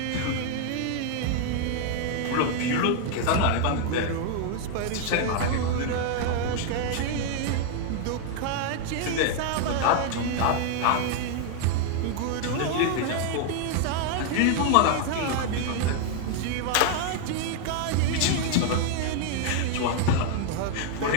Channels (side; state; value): both; different; correlation 0.00